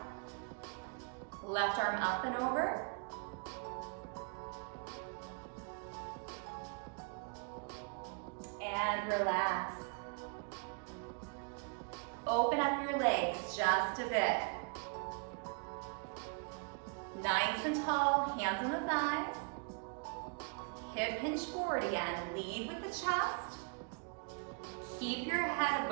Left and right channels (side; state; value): left; quieter; 37.9 dB